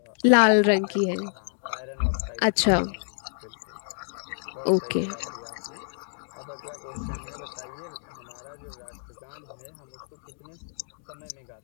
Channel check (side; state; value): right; silent; digital silence